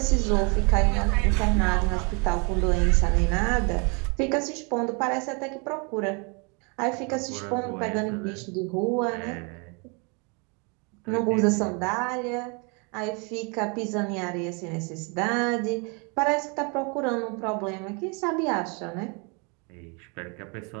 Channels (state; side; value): quieter; left; 33.1 dB